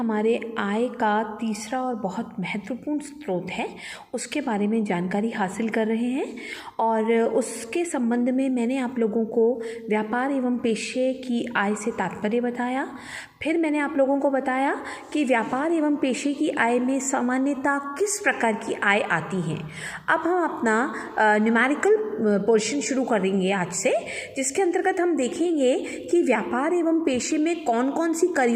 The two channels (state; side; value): identical; both; correlation 1.00